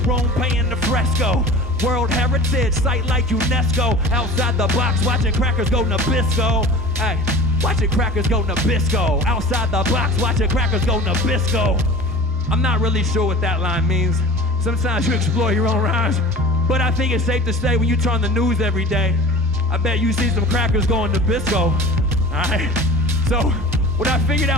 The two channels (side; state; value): both; normal; correlation 0.39